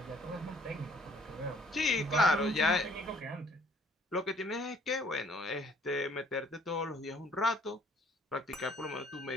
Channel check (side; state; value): both; normal; correlation 0.59